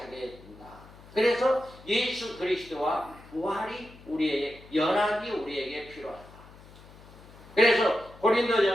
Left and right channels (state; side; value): noise; left; hum, 21 dB below the sound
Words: 된다. 그래서 예수 그리스도와 부활이 연합이 우리에게 필요하다. 그래서